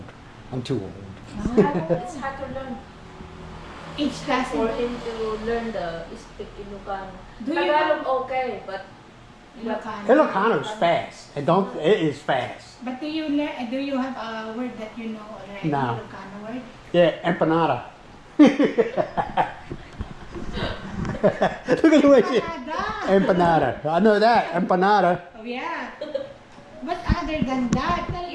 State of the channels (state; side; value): identical; both; correlation 1.00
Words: I'm too old. It's hard to learn. Each class. For him to learn the speak Ilocano. Do you Tagalog okay, but Ilocano. Ilocano is fast. It is fast. But do you have a word that you know already? No. Ilocano word? Yeah, empanada. Look at the way she... Empanada. Empanada. I know that. Empanada. Oh, yeah. But other than that,